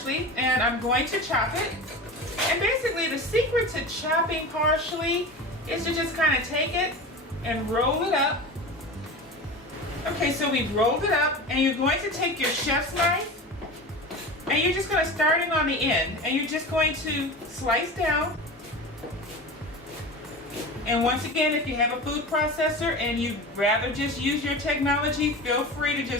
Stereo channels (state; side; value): normal; both; correlation 0.30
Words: and I'm going to chop it. And basically the secret to chopping parsley is to just kind of take it and roll it up. Okay, so we've rolled it up, and you're going to take your chef's knife, and you're just going to start it on the end, and you're just going to slice down. And once again, if you have a food processor and you'd rather just use your technology, feel free to